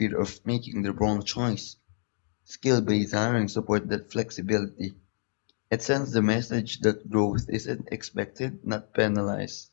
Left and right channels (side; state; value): right; silent; digital silence